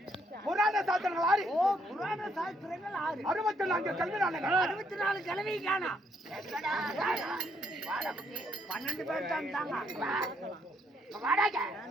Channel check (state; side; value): normal; both; correlation 0.72